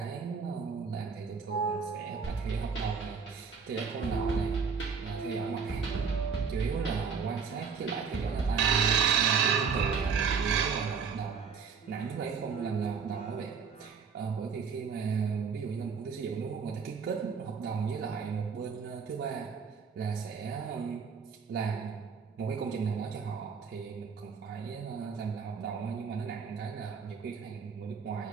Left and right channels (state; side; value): quieter; left; 5.9 dB